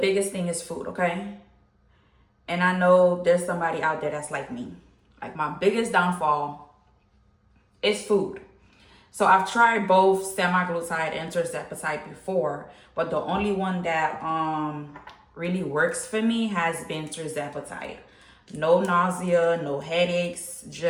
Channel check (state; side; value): identical; both; correlation 1.00